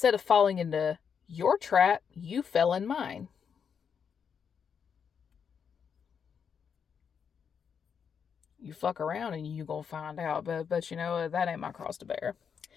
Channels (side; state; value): right; quieter; 7.0 dB